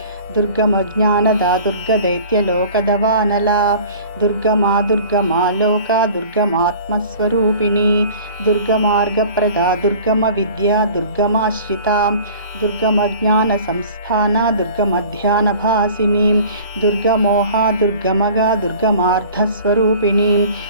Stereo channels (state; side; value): inverted; both; correlation -0.45